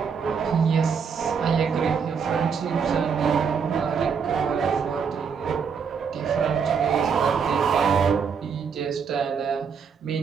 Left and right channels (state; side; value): quieter; left; 6.3 dB